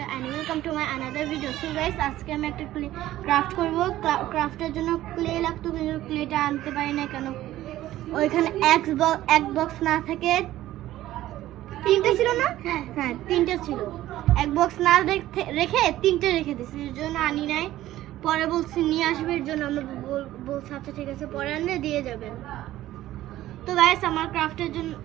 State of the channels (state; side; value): quieter; left; 14.6 dB